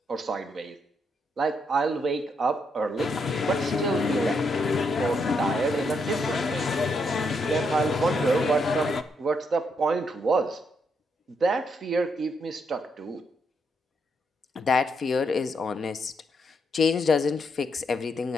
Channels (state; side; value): normal; both; correlation 0.78